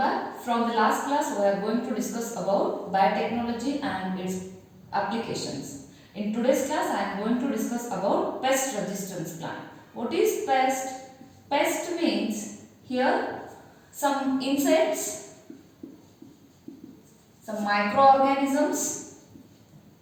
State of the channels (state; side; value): identical; both; correlation 1.00